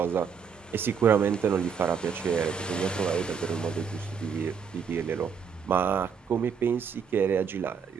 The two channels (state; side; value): quieter; left; 6.6 dB